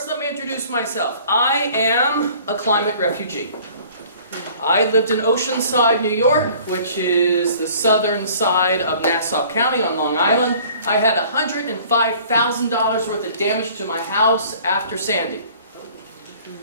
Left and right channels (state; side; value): inverted; both; correlation -0.51